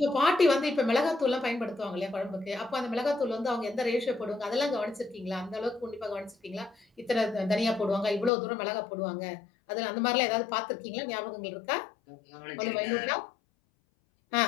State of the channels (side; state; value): right; drops out; at 8.3 s